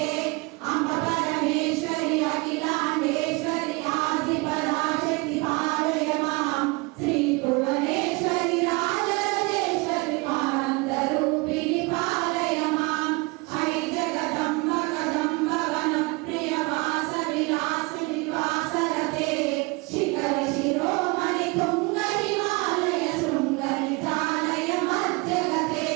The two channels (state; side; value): quieter; left; 26.9 dB